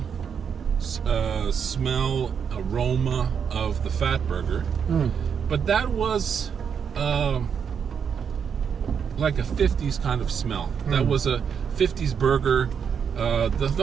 smell, aroma of the fat burger, but that was like a 50s kind of smell. That was a 50s burger,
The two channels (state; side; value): quieter; left; 7.1 dB